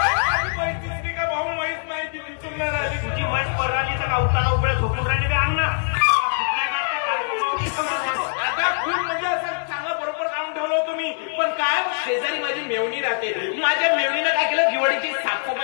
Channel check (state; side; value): silent; right; digital silence